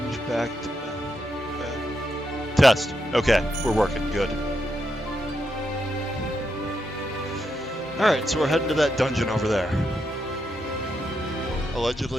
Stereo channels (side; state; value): both; normal; correlation 0.83